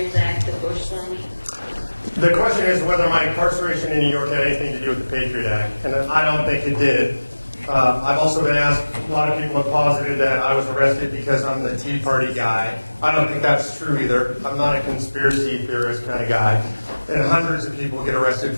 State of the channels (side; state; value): both; inverted; correlation -1.00